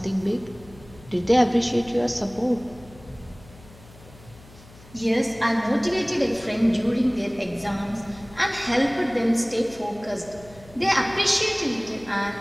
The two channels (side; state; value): left; noise; hum, 22 dB below the sound